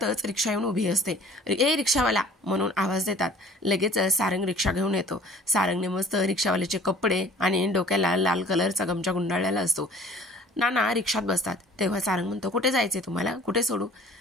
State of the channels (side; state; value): both; normal; correlation 0.50